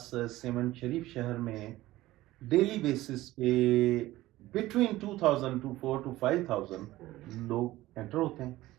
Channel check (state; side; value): quieter; left; 16.9 dB